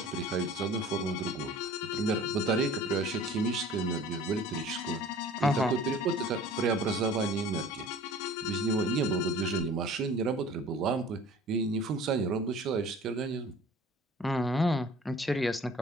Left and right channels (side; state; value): both; normal; correlation 0.46